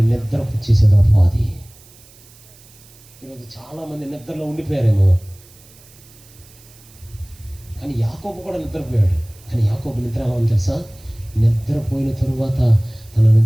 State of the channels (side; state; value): right; noise; hiss, 25 dB below the sound